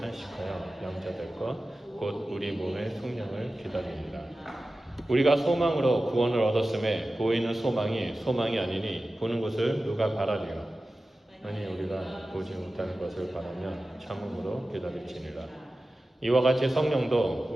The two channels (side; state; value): both; normal; correlation 0.95